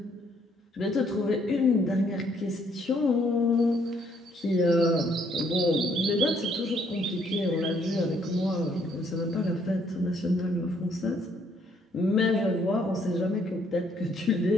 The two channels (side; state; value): both; normal; correlation 0.68